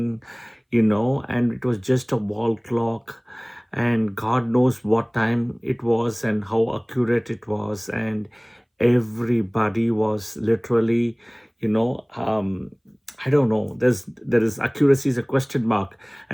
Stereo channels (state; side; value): identical; both; correlation 1.00